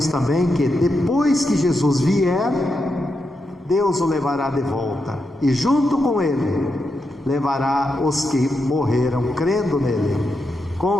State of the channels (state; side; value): normal; both; correlation 0.85